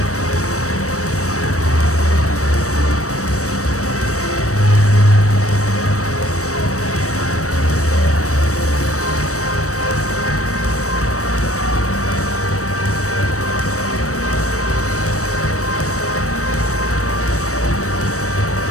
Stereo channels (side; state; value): right; late; 0.65 ms